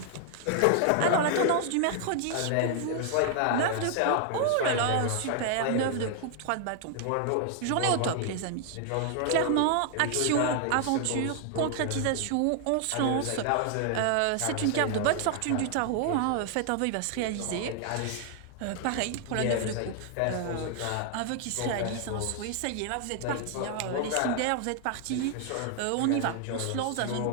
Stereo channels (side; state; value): both; different; correlation 0.00